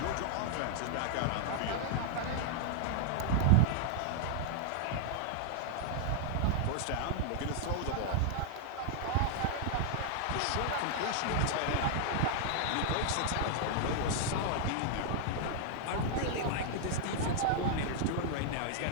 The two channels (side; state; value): both; different; correlation -0.01